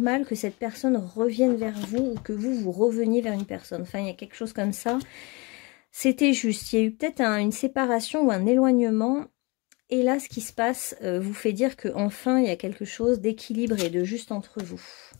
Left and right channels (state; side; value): quieter; right; 27.4 dB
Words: que cette personne revienne vers vous, ou que vous reveniez vers une personne. Enfin, il y a quelque chose comme ça. C'était juste, il y a eu peut-être une séparation ou un éloignement. Et là, ce qui se passe vous fait dire qu'enfin, il y a quelque chose d'équilibré, de juste entre vous.